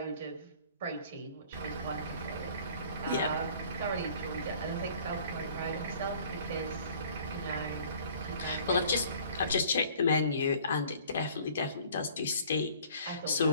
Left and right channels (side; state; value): both; inverted; correlation -0.53